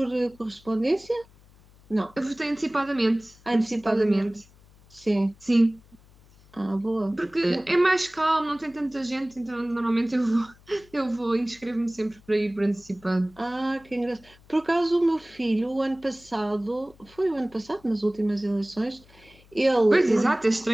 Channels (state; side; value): noise; left; hum, 27 dB below the sound